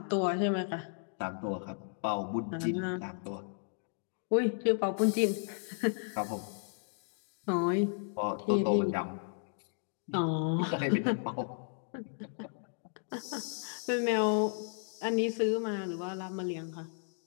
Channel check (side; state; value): right; silent; 55 dB below the other